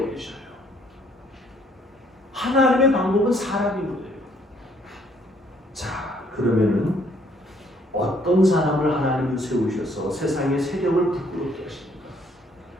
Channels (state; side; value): normal; both; correlation 0.65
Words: 버리셔요. 하나님의 방법은 사람이거든요. 자, 그러면은 어떤 사람을 하나님은 세우셔서 세상의 세력을 부끄럽게 하십니까?